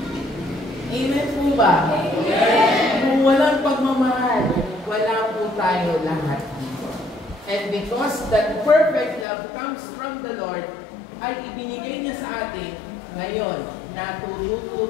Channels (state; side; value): drops out; right; at 9.2 s